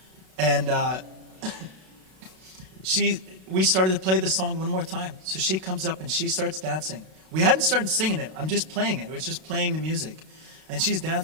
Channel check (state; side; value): late; left; 32 ms